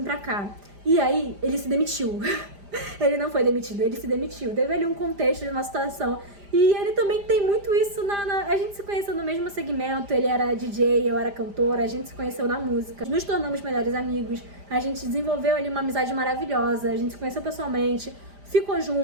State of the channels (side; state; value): left; late; 5.0 ms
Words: pra cá. E aí ele se demitiu. Ele não foi demitido, ele se demitiu. Teve ali um contexto de uma situação. E ele também tem muito isso a gente se conheceu no mesmo segmento, ele era DJ, eu era cantora, a gente se conheceu na música. Nos tornamos melhores amigos, a gente desenvolveu ali uma amizade maravilhosa, a gente se conheceu pessoalmente, ficou